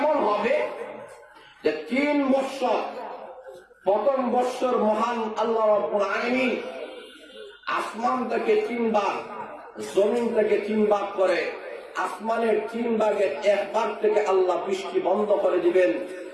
হবে যে 3 বৎসর, প্রথম বৎসর মহান আল্লাহ রাব্বুল আলামিন আসমান থেকে 3 ভাগ, জমিন থেকে 3 ভাগ করে, আসমানের 3 ভাগের 1 ভাগ থেকে আল্লাহ বৃষ্টি বন্ধ করে দিবেন,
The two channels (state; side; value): identical; both; correlation 1.00